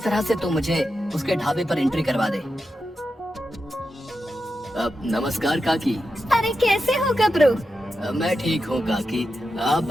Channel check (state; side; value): normal; both; correlation 0.89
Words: से तू मुझे उसके ढाबे पर एंट्री करवा दे। नमस्कार काकी। अरे कैसे हो गबरू? मैं ठीक हूँ काकी, आप